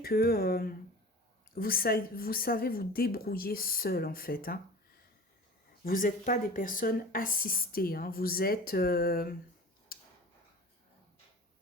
vous savez vous débrouiller seul en fait. Hein. Vous n'êtes pas des personnes assistées. Hein. Vous êtes... je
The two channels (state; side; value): normal; both; correlation 0.39